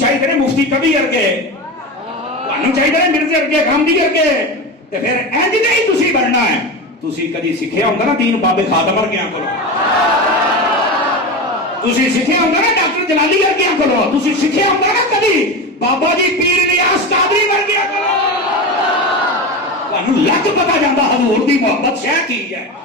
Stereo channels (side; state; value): both; normal; correlation 0.23